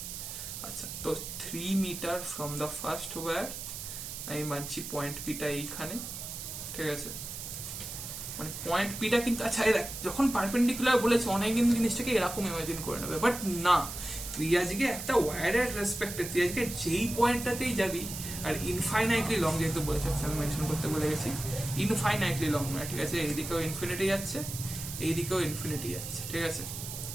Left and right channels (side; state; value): right; noise; hiss, 8 dB below the sound